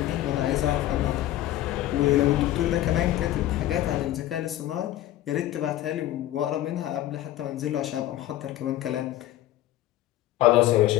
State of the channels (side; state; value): right; quieter; 14.1 dB